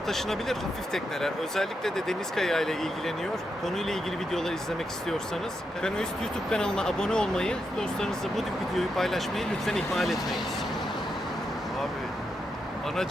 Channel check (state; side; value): normal; both; correlation 0.84